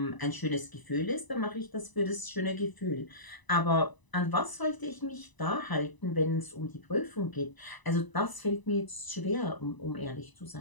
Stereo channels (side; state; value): right; late; 1.0 ms